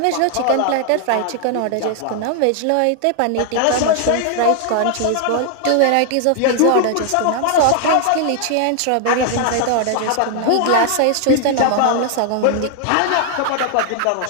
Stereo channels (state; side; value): different; both; correlation 0.00